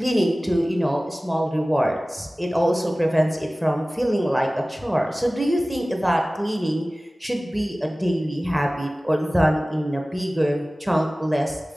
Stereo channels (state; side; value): normal; both; correlation 0.98